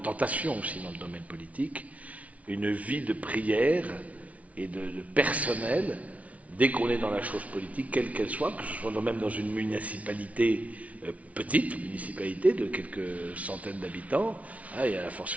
aussi dans le domaine politique, une vie de prière et de personnel, dès qu'on est dans la chose politique, quelle qu'elle soit, que ce soit même dans une municipalité, petite municipalité de quelques centaines d'habitants, et à la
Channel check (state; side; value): late; left; 0.067 ms